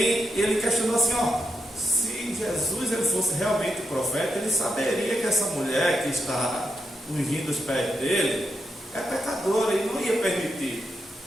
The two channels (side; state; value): both; normal; correlation 0.84